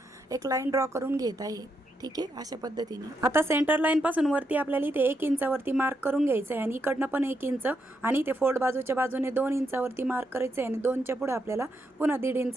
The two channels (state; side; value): normal; both; correlation 0.81